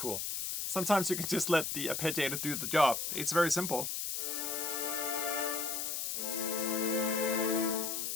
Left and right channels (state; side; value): noise; left; hiss, 2 dB below the sound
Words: Sometimes you can just let the arpeggiator do the job. It's very simple.